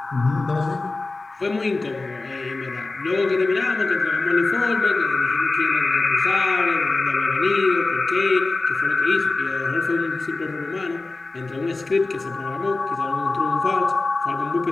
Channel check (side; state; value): right; quieter; 3.4 dB